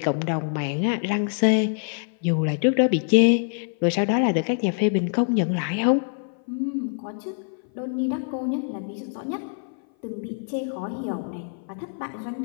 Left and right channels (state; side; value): silent; right; 57 dB below the other